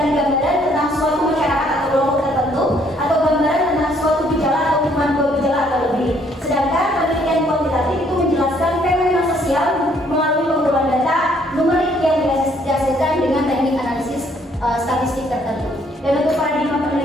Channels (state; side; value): normal; both; correlation 0.66